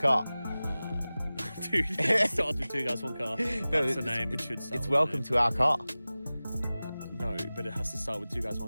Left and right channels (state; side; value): inverted; both; correlation -0.97